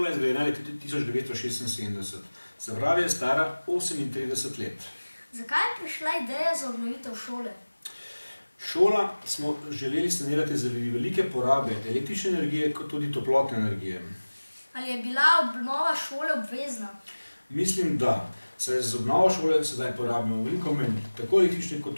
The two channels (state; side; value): inverted; both; correlation -1.00